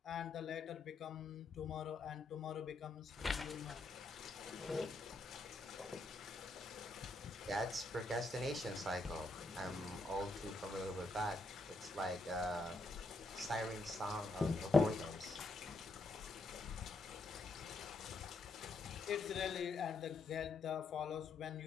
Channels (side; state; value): right; quieter; 3.1 dB